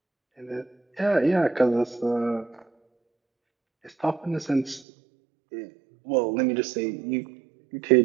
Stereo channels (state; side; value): drops out; left; at 4.9 s